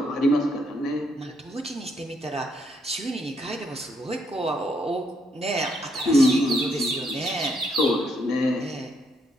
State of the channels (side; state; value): both; normal; correlation 0.73